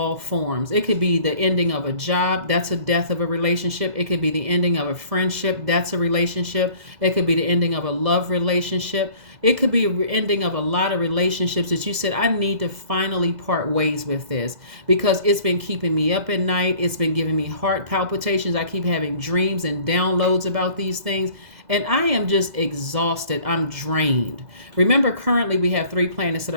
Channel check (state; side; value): late; left; 2.0 ms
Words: forms. It could be the ending of a job. That's a death of a relationship. It could be the ending of a friendship. That's a relationship. It could be the ending of a love relationship. It could be an ending of a lot of relationships that you said, I need to finally part ways with this because it's been keeping me up at night. It's been giving me heart palpitations. I keep having dreams and downloads about these things. And I am just exhausted. I'm drained. Remember, currently we have 3 planets that